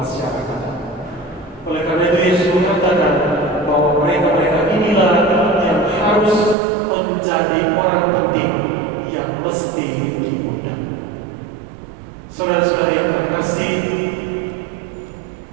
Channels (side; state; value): left; drops out; at 6.6 s